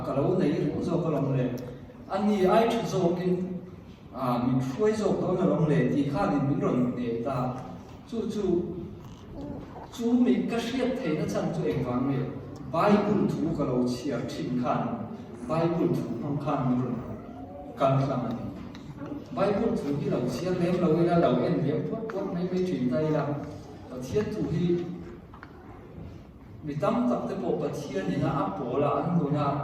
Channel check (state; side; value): identical; both; correlation 1.00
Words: ka lo nei ru zo ka long le ani ai thu zo kin min khuai zo ko na long le ti kha din min ron ne ta chu mi ka hriat thei na chan chu eng wang me bible thu ka lo chia thin khan bible thu hong khan min ron kan klang ani bible thu hi lo chia lem lo ila lo en lem pot mai mai thin tai la pathian thu hi mi tam tak te po pathian ni na a pola an do na